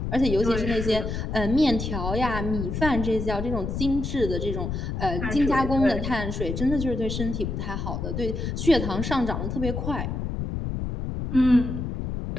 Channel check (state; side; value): noise; left; rumble, 3 dB below the sound